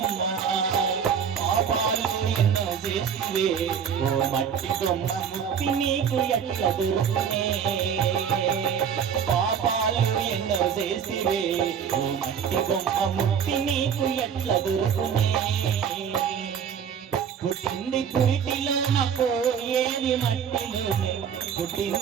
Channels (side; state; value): left; quieter; 7.5 dB